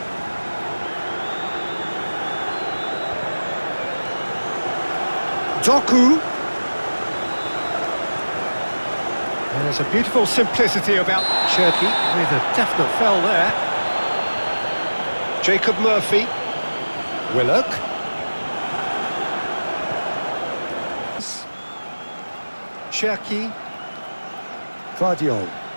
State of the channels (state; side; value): inverted; both; correlation -1.00